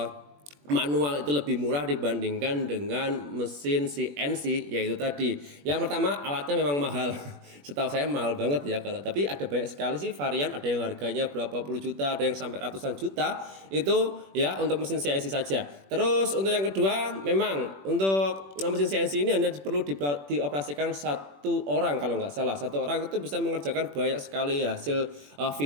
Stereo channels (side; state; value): left; late; 21 ms